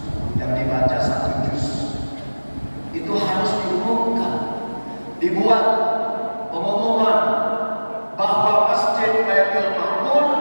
yang dibaca 1 juz. Itu harus diumumkan, dibuat pengumuman bahwa masjid Baitul Ma'mur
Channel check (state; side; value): inverted; both; correlation -1.00